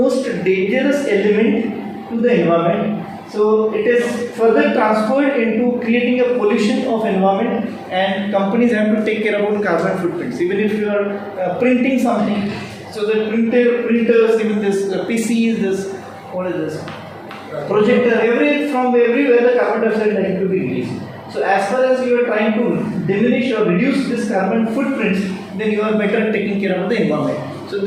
dangerous element to the environment. So it is further transferred into creating a pollution of environment, and companies have to take care about carbon footprints. Even if you are printing something, so the printers, even this PCs, this what is this projector, from everywhere the carbon dioxide is likely to be released. So as far as you are trying to diminish or reduce this carbon footprints, then you are better taking care of the environment. So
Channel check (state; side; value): identical; both; correlation 1.00